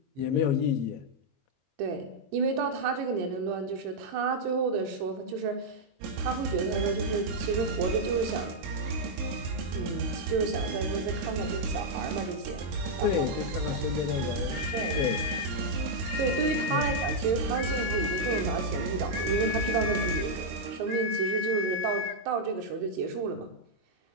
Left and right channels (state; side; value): late; left; 22 ms